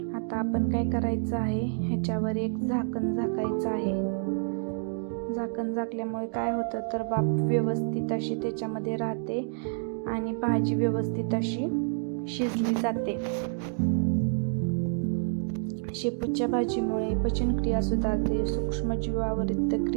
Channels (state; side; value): silent; left; 59 dB below the other